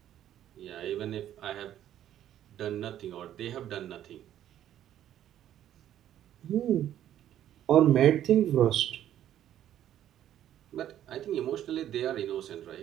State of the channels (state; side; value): quieter; left; 11.4 dB